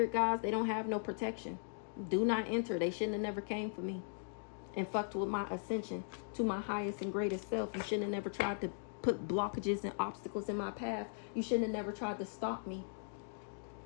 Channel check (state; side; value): silent; right; digital silence